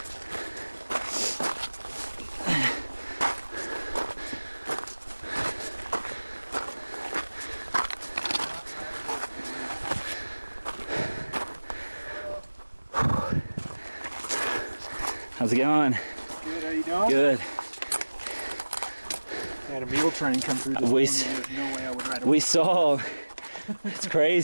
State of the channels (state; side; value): inverted; both; correlation -1.00